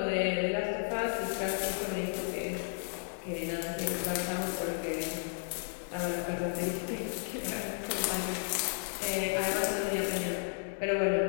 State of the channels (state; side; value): silent; right; 56 dB below the other